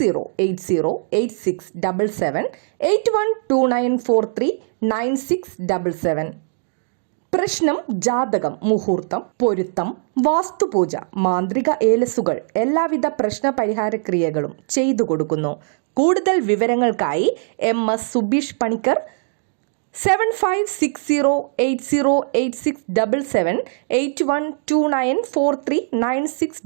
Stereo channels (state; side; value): silent; left; digital silence